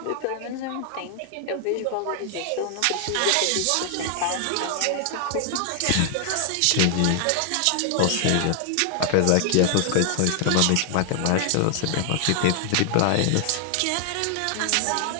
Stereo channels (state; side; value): different; both; correlation 0.00